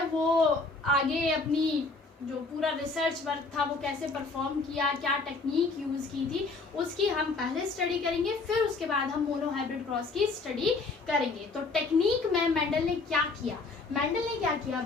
वो आगे अपनी जो पूरा रिसर्च वर्क था वो कैसे परफॉर्म किया, क्या टेक्निक यूज़ की थी, उसकी हम पहले स्टडी करेंगे। फिर उसके बाद हम मोनो हाइब्रिड क्रॉस की स्टडी करेंगे। तो टेक्निक में मेंडल ने क्या किया, मेंडल ने क्या किया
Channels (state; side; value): quieter; right; 3.9 dB